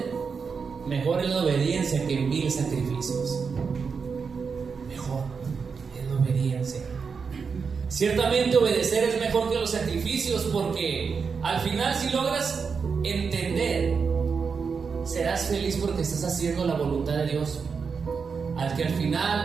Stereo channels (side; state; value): left; quieter; 5.6 dB